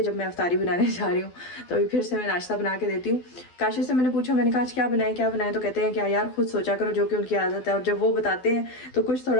जब मैं अफ्तारी बनाने जा रही हूँ तो अभी फिर से मैं नाश्ता बना के देती हूँ। काशिफ से मैंने पूछा, मैंने कहा आज क्या बनाए, तो कहते हैं क्या यार खुद सोचा करो, जो कि उनकी आदत है। और जब वो बताते हैं तो कुछ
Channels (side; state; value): right; late; 12 ms